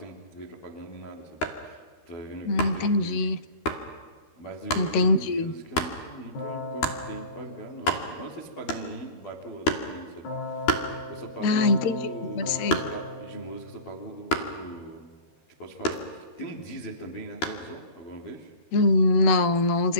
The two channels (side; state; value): right; late; 13 ms